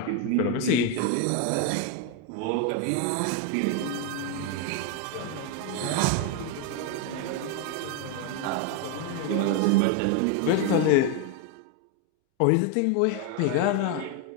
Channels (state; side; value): different; both; correlation 0.01